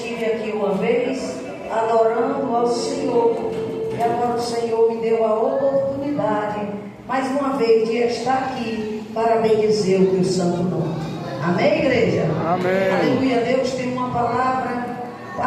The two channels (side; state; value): both; identical; correlation 1.00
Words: aqui uma vez adorando ao Senhor e agora o Senhor me deu a oportunidade mais uma vez de estar aqui para bendizer o teu santo nome. Amém, igreja? Amém. Aleluia. Deus tem uma palavra